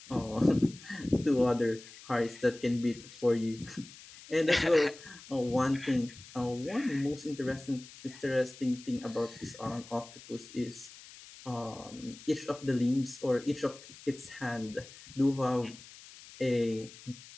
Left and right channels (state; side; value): noise; left; hiss, 18 dB below the sound